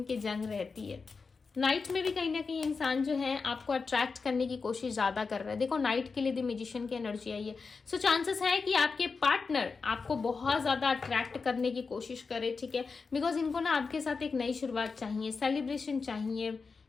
जंग रहती है। नाइट में भी कहीं ना कहीं इंसान जो है आपको अट्रैक्ट करने की कोशिश ज्यादा कर रहा है। देखो नाइट के लिए द मैजिशियन की एनर्जी आई है। सो चांसेस है कि आपके पार्टनर आपको बहुत ज्यादा अट्रैक्ट करने की कोशिश करे, ठीक है, बिकॉज इनको ना आपके साथ एक नई शुरुआत चाहिए, सेलिब्रेशन चाहिए,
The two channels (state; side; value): quieter; right; 4.7 dB